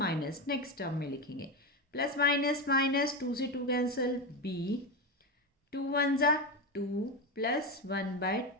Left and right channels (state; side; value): normal; both; correlation 0.15